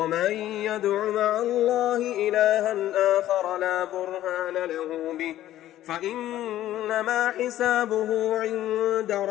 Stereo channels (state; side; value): quieter; right; 13.3 dB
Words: يدع مع الله إلها آخر لا برهان له به فإنما حسابه عند